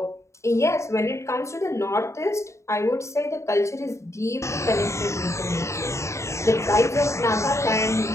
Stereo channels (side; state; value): right; late; 0.14 ms